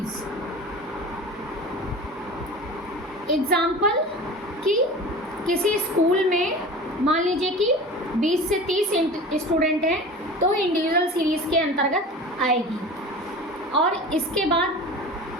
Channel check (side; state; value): both; normal; correlation 0.36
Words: एग्जाम्पल कि किसी स्कूल में मान लीजिए कि 20 से 30 स्टूडेंट हैं, तो इंडिविजुअल सीरीज के अंतर्गत आएगी। और इसके बाद